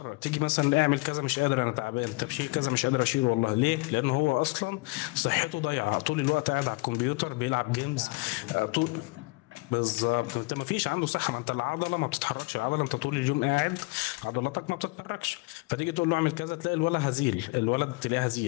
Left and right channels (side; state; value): right; quieter; 25.6 dB